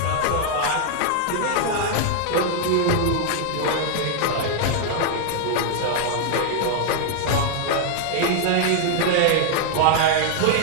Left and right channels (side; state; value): both; different; correlation 0.00